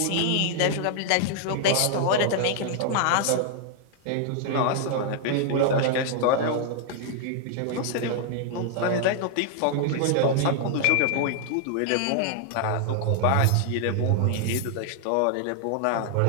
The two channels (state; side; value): different; both; correlation 0.00